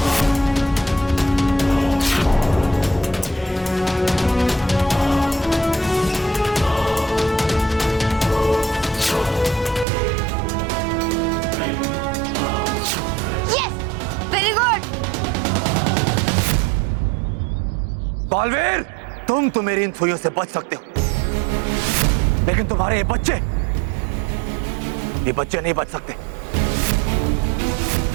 बालवीर, तुम तो मेरी इन सुइयों से बच सकते हो, लेकिन तुम्हारे ये बच्चे नहीं बच सकते।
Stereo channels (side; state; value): left; drops out; at 9.9 s